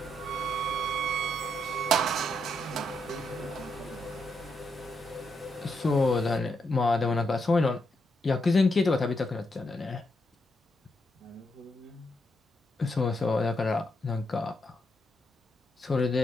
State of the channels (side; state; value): both; normal; correlation 0.80